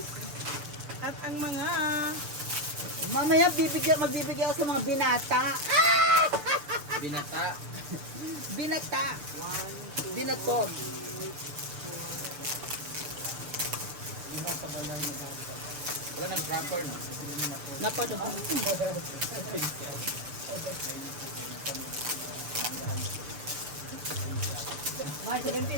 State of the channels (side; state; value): left; late; 6.8 ms